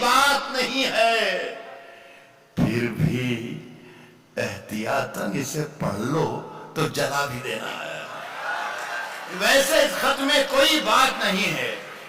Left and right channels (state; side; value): identical; both; correlation 1.00